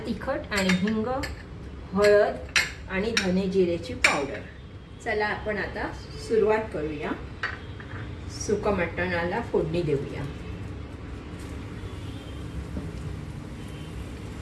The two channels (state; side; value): identical; both; correlation 1.00